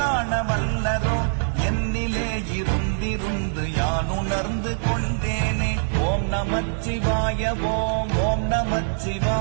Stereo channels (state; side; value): silent; left; digital silence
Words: வல்லதோ என்னிலே இருந்திருந்து யான் உணர்ந்து கொண்டேனே ஓம் நமச்சிவாய ஓம் ஓம்